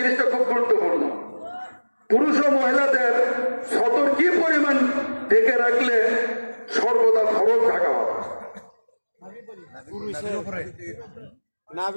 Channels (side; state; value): both; inverted; correlation -1.00